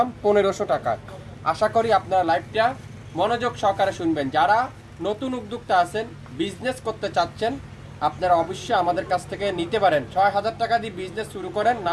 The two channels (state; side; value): identical; both; correlation 1.00